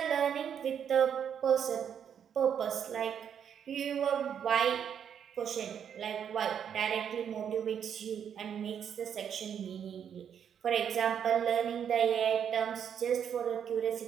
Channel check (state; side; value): quieter; left; 8.3 dB